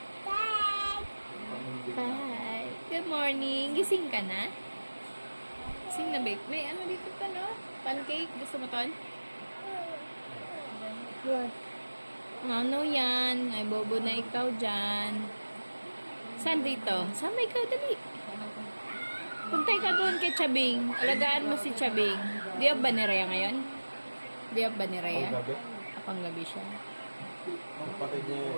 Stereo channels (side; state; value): both; inverted; correlation -1.00